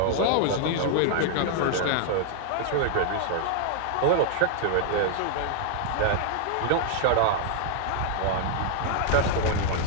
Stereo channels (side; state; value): both; different; correlation 0.00